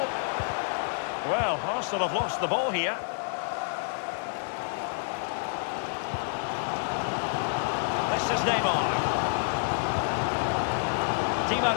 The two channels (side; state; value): right; silent; digital silence